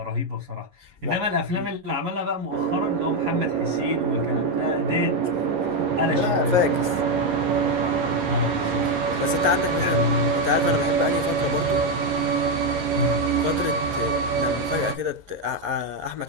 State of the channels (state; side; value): late; left; 11 ms